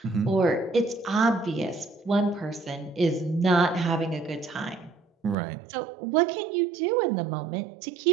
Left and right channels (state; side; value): drops out; left; at 5.4 s